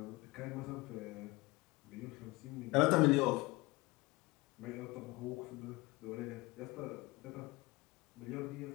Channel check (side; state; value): right; quieter; 22.7 dB